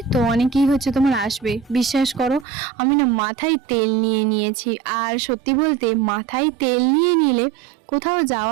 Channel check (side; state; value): left; drops out; at 2.5 s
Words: তো অনেকেই হচ্ছে তোমার আসবে। বিশ্বাস করো আমি না মাথায় তেল নিয়ে নিয়েছি, আর সত্যি বলতে মাথায় তেল নিয়ে নিলে কোথাও